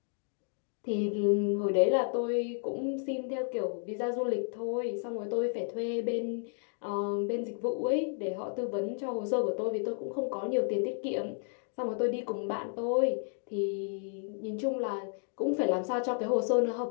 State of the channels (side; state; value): right; silent; 56 dB below the other